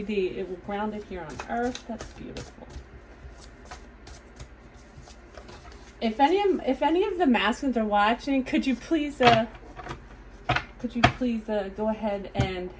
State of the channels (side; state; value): both; identical; correlation 1.00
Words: It will ground it here on earth. That's beautiful. If any of the masculines are watching, could you please go ahead and